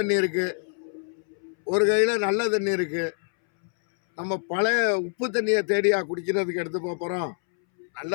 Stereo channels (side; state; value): right; silent; 61 dB below the other